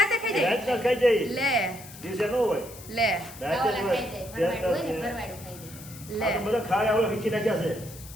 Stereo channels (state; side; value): noise; left; hiss, 17 dB below the sound